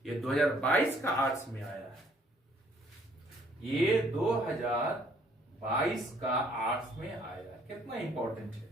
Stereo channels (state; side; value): normal; both; correlation 0.62